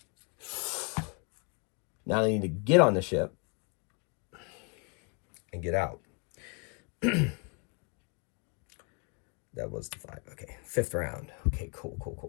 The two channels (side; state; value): right; quieter; 34.3 dB